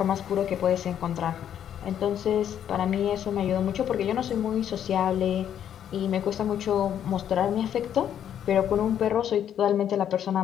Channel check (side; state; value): right; quieter; 9.7 dB